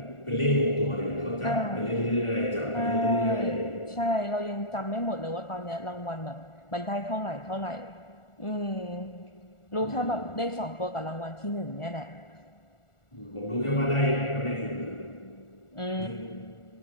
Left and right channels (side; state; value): right; late; 1.4 ms